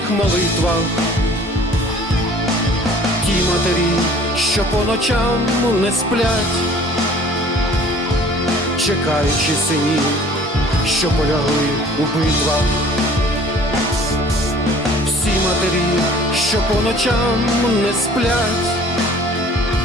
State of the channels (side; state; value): both; normal; correlation 0.51